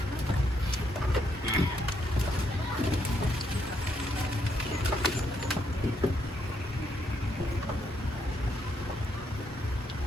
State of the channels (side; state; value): both; normal; correlation 0.75